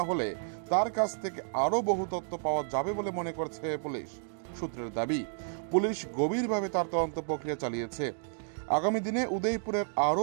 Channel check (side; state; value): left; silent; digital silence